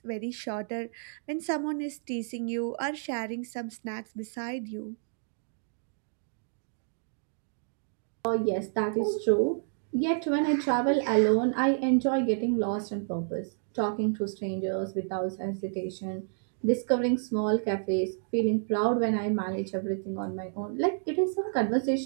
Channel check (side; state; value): left; silent; digital silence